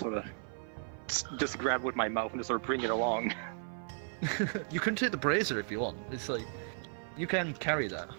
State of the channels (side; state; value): left; silent; 55 dB below the other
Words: of just grab with my mouth and just sort of bring it along. You can take the brazier if you want. It's like, you can carry that.